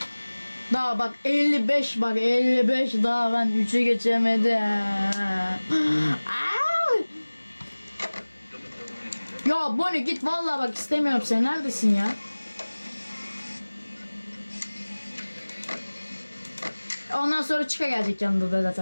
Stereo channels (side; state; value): both; inverted; correlation -1.00